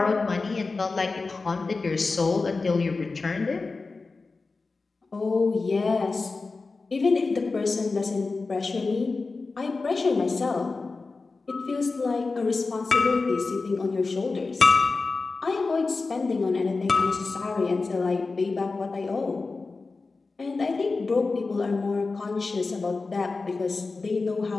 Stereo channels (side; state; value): right; quieter; 3.9 dB